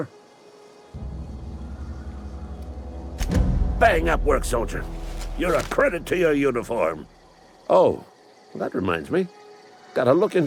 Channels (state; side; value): identical; both; correlation 1.00